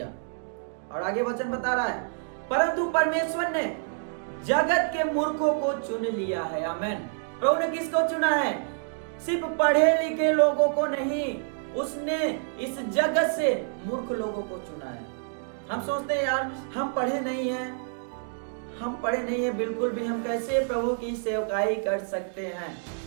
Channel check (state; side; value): silent; left; digital silence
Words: और आगे वचन बता रहा है, परंतु परमेश्वर ने जगत के मूर्खों को चुन लिया है। आमेन। प्रभु ने किसको चुना है? सिर्फ पढ़े लिखे लोगों को नहीं, उसने इस जगत से मूर्ख लोगों को चुना है। हम सोचते हैं यार हम पढ़े नहीं हैं, हम पढ़े नहीं हैं, बिल्कुल भी, हम कैसे प्रभु की सेवकाई कर सकते हैं।